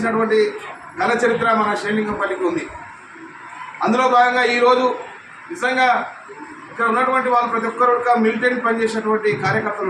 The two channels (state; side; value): identical; both; correlation 1.00